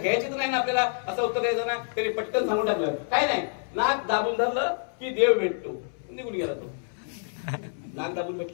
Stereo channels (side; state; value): right; silent; 60 dB below the other